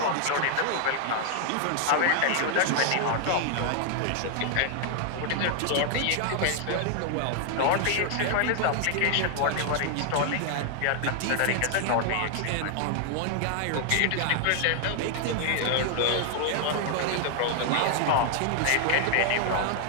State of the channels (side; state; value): both; different; correlation 0.00